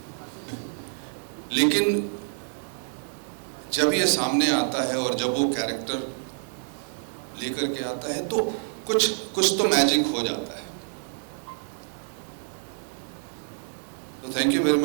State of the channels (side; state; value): left; silent; digital silence